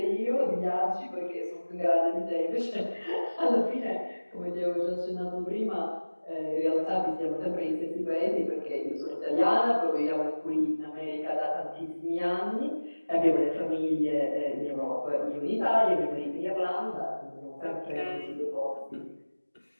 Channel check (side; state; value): both; inverted; correlation -1.00